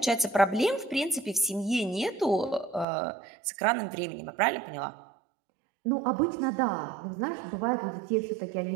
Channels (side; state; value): left; drops out; at 2.9 s